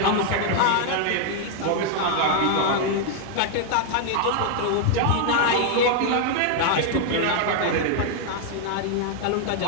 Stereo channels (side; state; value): both; different; correlation 0.00